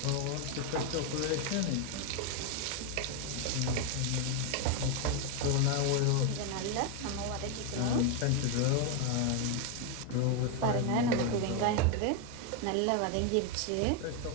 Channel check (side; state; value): both; different; correlation 0.01